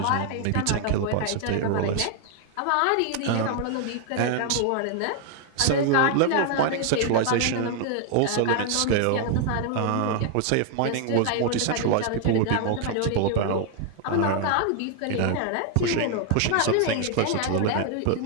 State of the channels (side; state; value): both; different; correlation 0.00